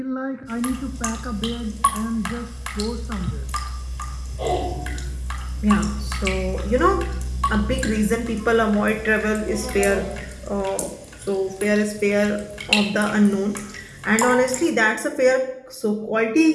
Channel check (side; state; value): both; identical; correlation 1.00